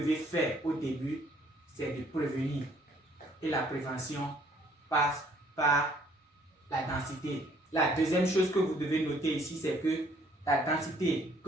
faire au début, c'est de prévenir. Et la prévention passe par la densité. La deuxième chose que vous devez noter ici, c'est que la densité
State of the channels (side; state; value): both; normal; correlation 0.62